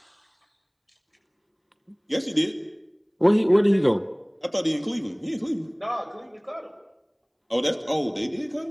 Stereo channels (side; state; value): both; identical; correlation 1.00